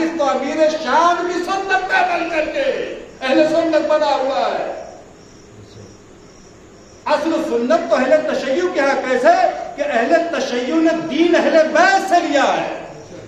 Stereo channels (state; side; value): identical; both; correlation 1.00